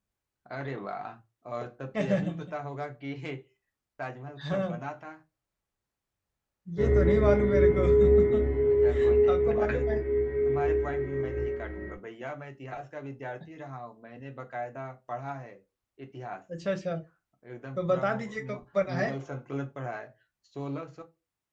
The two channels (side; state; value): both; identical; correlation 1.00